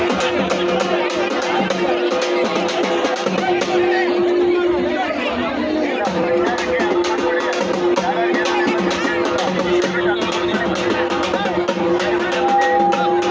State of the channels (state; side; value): identical; both; correlation 1.00